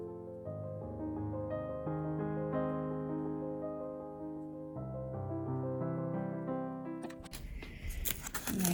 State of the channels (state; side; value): identical; both; correlation 1.00